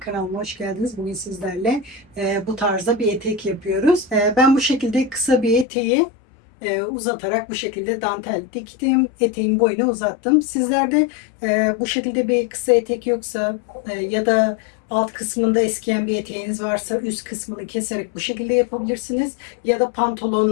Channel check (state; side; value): drops out; right; at 5.7 s